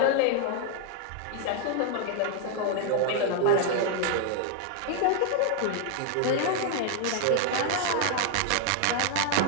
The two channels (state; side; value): different; both; correlation 0.00